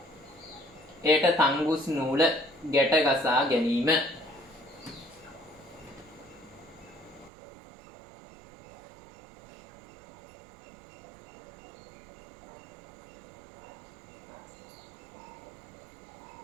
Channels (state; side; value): drops out; left; at 7.3 s